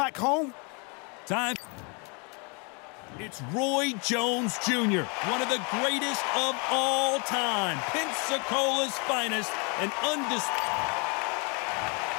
home. Time. It's Roy Jones Jr., one of the greatest of all time. Pensacola's finest and undisputed.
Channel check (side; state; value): right; quieter; 33.7 dB